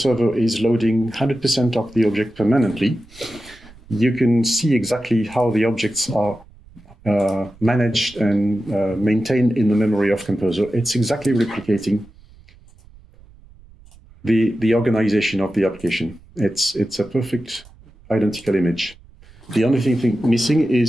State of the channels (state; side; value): noise; right; rumble, 24 dB below the sound